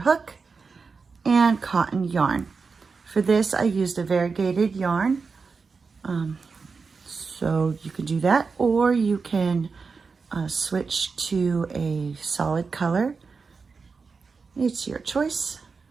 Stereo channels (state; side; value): quieter; left; 4.8 dB